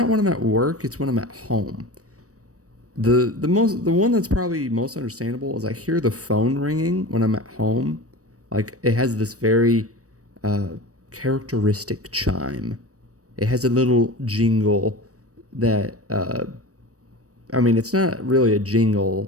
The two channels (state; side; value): late; left; 0.66 ms